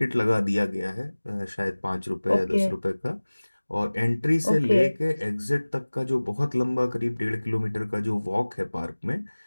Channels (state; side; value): inverted; both; correlation -1.00